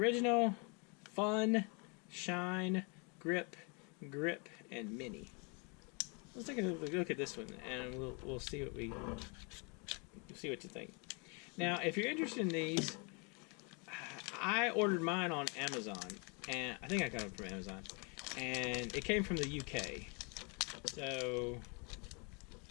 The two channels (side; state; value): right; quieter; 33.7 dB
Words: fun, shine, grip, and mini. Let's take a look at this one, and we'll see what you think. Now, if you're interested in these, I ordered mine on Amazon, and I think I got them from Amazon, and it came from the UK. So,